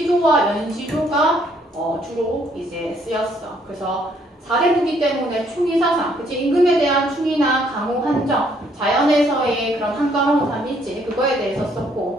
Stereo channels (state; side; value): normal; both; correlation 0.67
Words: 연시조가 주로 이제 쓰였어. 그래서 4대구기 때문에 충의사상, 그치? 임금에 대한 충의나 강호 한정, 자연에서의 그런 한가로운 삶일지 그거에 대해서